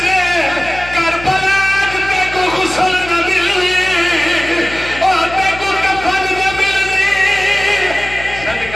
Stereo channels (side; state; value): left; noise; hum, 14 dB below the sound